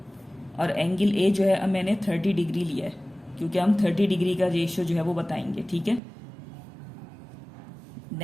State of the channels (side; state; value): left; drops out; at 6.0 s